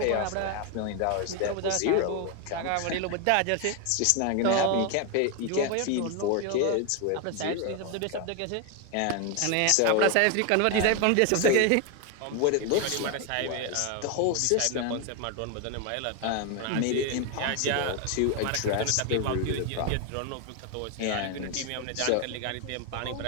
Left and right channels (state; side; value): different; both; correlation 0.01